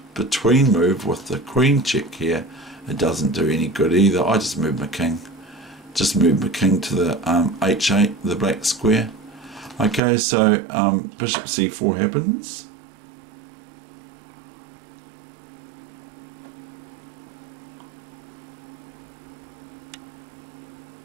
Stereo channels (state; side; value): drops out; left; at 10.0 s